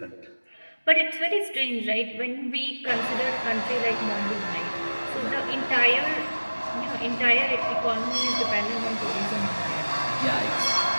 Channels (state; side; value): inverted; both; correlation -1.00